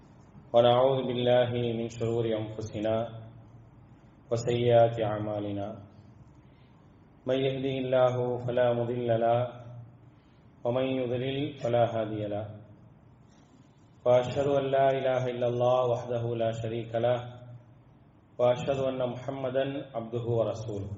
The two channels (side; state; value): both; identical; correlation 1.00